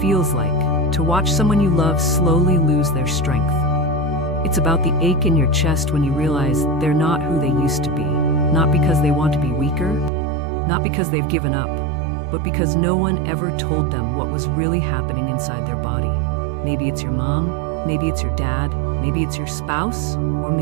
feels like to watch someone you love slowly lose their strength. It's about the ache in your chest when you realize they're not who they used to be, not because they want to be weaker, not because they've given up, but because no one ever told them what was really happening inside their body. Maybe it's your mom, maybe it's your dad, maybe it's your spouse, or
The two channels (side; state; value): left; drops out; at 10.1 s